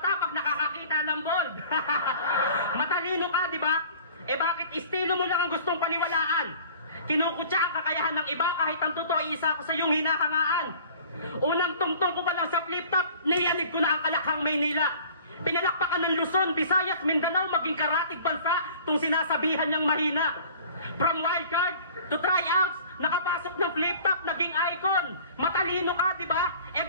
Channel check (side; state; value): both; inverted; correlation -0.47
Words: pag nakakakita ng bold. Matalino ka, di ba? Bakit estilo mo lang ang gustong paniwalaan? Kinukutya ang kakayahan ng iba kahit ang totoo isa ko sa iyong hinahangaan. Unang tungtong ko pa lang sa flip top, niyanig ko na ang Kalakhang Maynila. Pinalakpakan ng Luzon, Visayas, Mindanao, maging karatig bansa, tung sinasabihan niyang mahina. From wildcard to tryouts, nakapasok ng flip top, naging icon. Matalino ka, di ba?